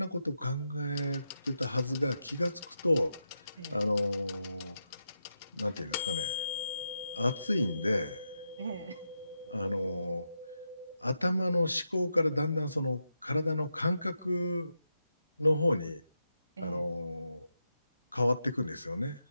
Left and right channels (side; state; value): both; inverted; correlation -0.86